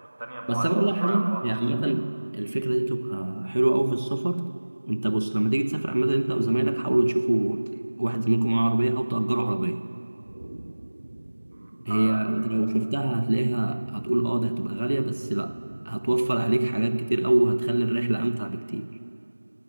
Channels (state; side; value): inverted; both; correlation -1.00